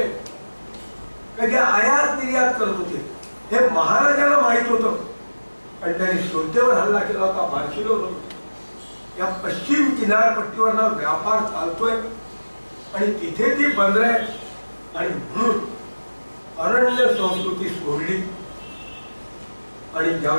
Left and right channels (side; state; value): both; inverted; correlation -1.00